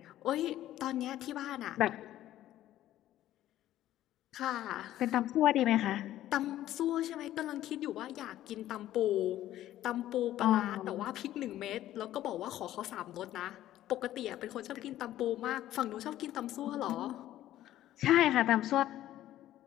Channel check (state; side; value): quieter; right; 13.4 dB